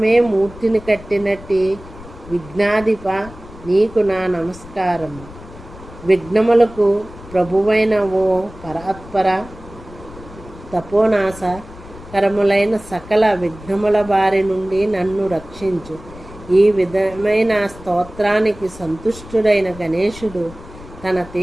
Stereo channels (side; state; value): left; noise; rumble, 17 dB below the sound